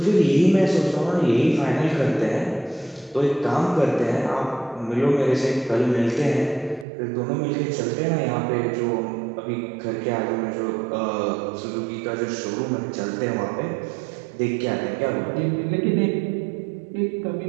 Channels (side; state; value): left; drops out; at 6.9 s